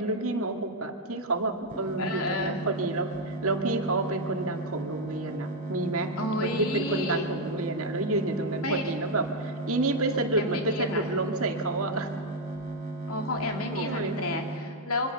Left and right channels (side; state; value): both; normal; correlation 0.03